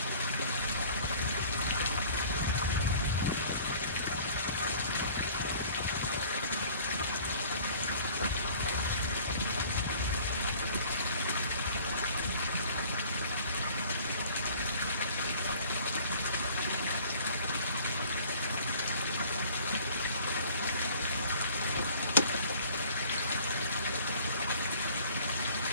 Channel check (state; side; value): inverted; both; correlation -0.51